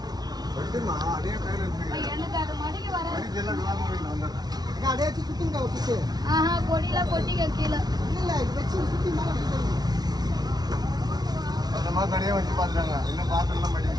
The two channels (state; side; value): late; left; 0.19 ms